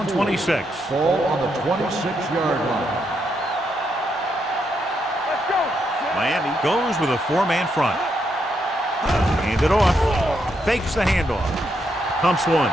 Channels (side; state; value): both; normal; correlation 0.79